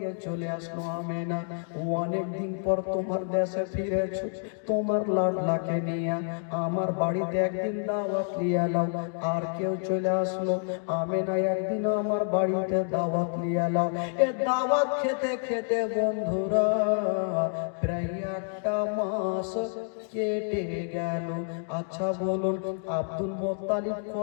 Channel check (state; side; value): silent; right; 59 dB below the other